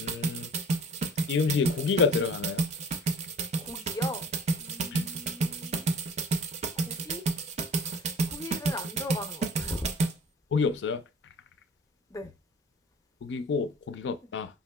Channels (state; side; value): normal; both; correlation 0.46